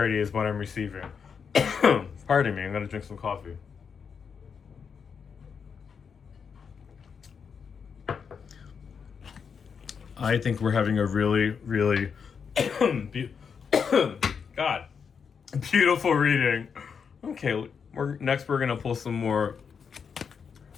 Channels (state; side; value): quieter; right; 6.4 dB